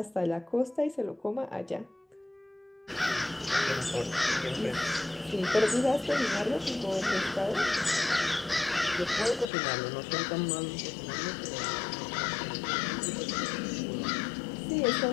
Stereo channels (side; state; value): right; drops out; at 9.5 s